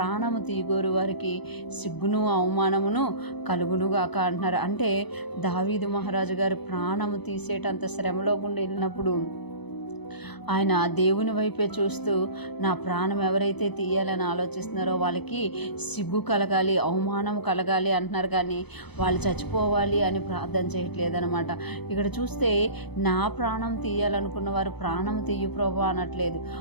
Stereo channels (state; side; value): late; right; 0.99 ms